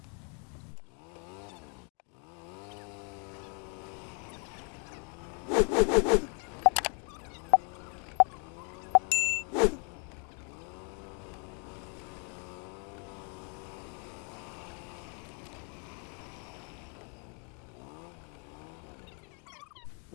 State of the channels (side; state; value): right; quieter; 39.0 dB